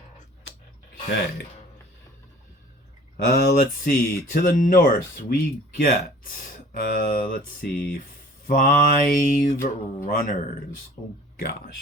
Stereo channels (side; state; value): both; normal; correlation 0.48